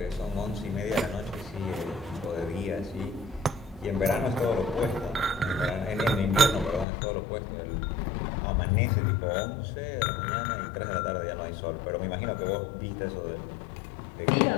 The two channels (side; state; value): right; drops out; at 6.9 s